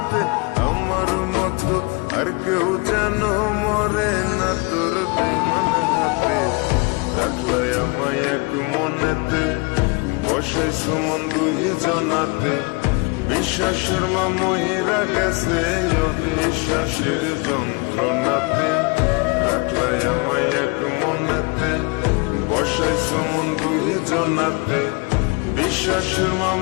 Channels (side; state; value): right; quieter; 29.3 dB